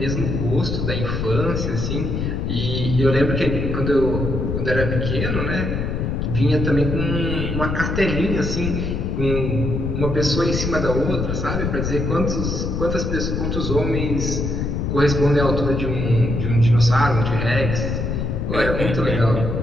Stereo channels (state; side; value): noise; left; rumble, 1 dB below the sound